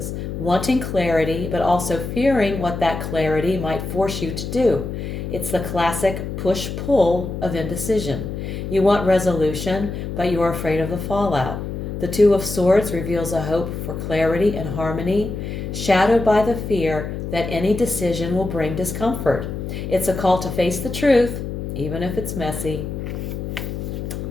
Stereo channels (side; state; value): left; noise; hum, 5 dB below the sound